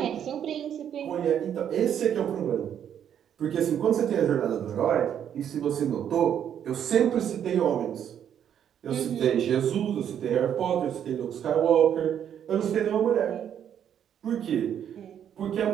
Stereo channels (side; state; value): left; quieter; 9.2 dB